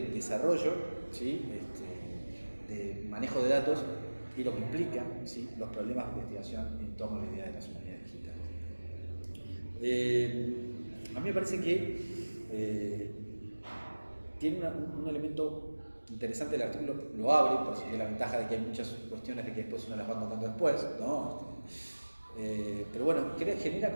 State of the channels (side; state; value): both; inverted; correlation -1.00